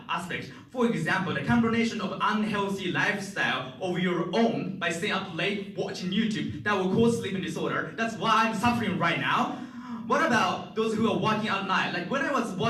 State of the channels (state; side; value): identical; both; correlation 1.00